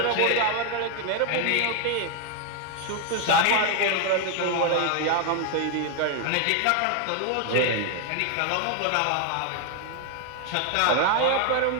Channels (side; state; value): both; different; correlation 0.01